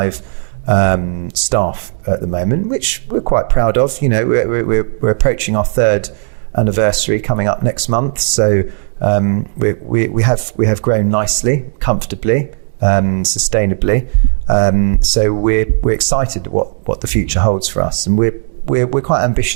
staff at the moment, which we're quite proud of. We're approaching our 3rd anniversary coming up next month, so we have grown nicely, comfortably, sustainably. So we're excited what the future holds for us, and we're quite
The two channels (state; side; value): silent; left; digital silence